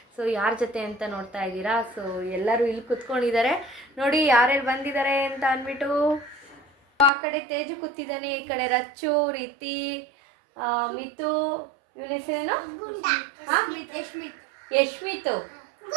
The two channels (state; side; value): drops out; left; at 7.1 s